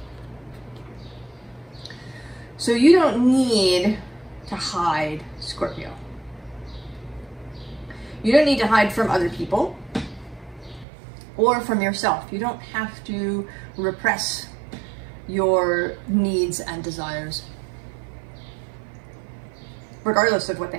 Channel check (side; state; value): left; drops out; at 10.9 s